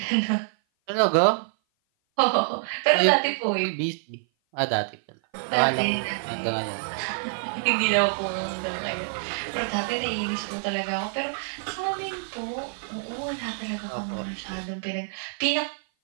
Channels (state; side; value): silent; left; 56 dB below the other